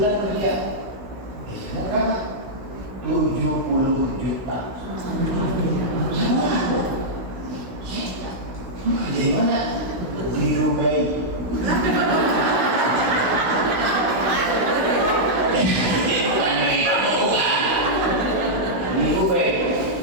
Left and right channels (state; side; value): late; left; 16 ms